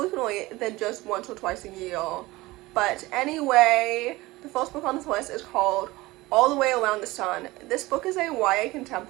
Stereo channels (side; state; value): left; quieter; 20.0 dB